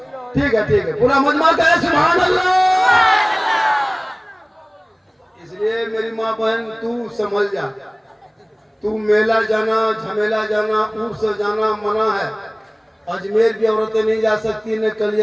ठीक है, पूरा मजमा का है सुभान अल्लाह। इसलिए मेरी माँ बहन तू समझ जा, तू मेला जाना, झमेला जाना, ऊर से जाना मना है। अजमेर भी औरतें नहीं जा सकती, न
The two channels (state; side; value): identical; both; correlation 1.00